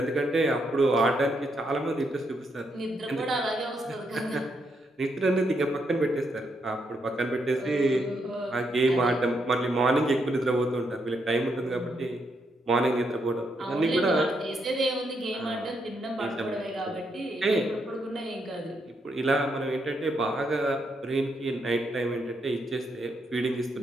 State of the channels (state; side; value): normal; both; correlation 0.78